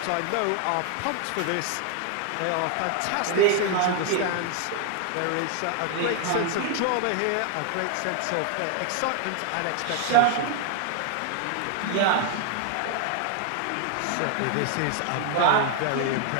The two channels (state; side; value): different; both; correlation 0.00